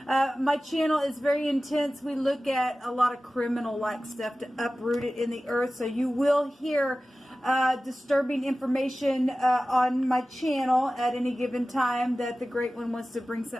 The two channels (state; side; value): normal; both; correlation 0.96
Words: My channel is very intense. We look at a lot of criminal-like stuff to uproot it in the earth, so you will hear disturbing information on my channel at any given time that the Great One wants to bring